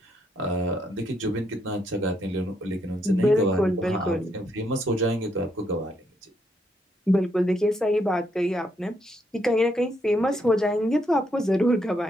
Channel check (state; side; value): normal; both; correlation 0.76